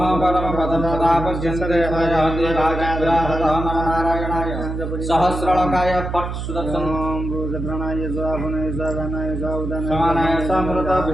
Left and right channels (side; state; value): right; noise; hum, 5 dB below the sound